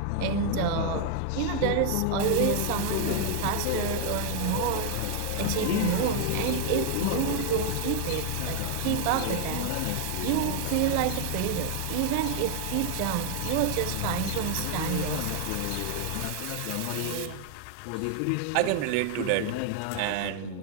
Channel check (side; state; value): both; different; correlation 0.00